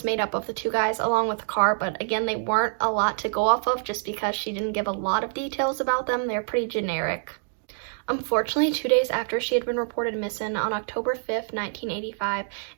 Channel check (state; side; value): silent; left; digital silence